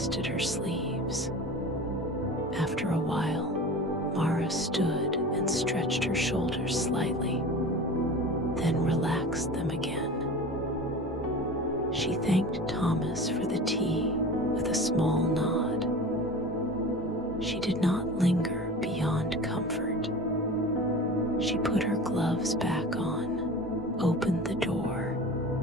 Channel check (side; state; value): both; normal; correlation 0.35